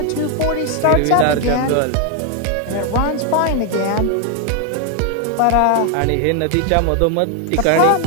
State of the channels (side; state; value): both; different; correlation 0.01